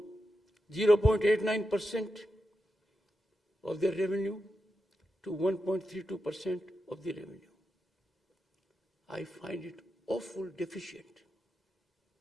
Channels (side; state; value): both; normal; correlation 0.88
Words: 0.89% of their revenue to 1.32% of the revenue. I find it awful deficient.